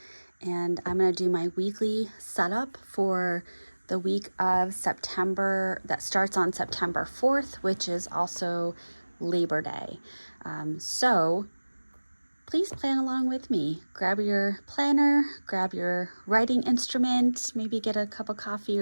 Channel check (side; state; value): both; inverted; correlation -1.00